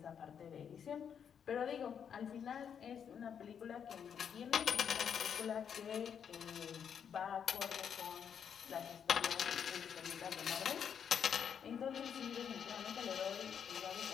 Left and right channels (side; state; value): right; quieter; 7.8 dB